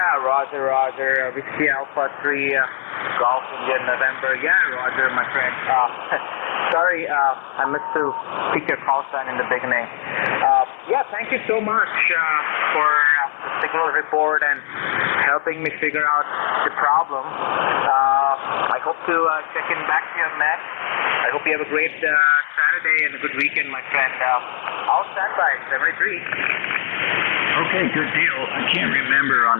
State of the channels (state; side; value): silent; right; digital silence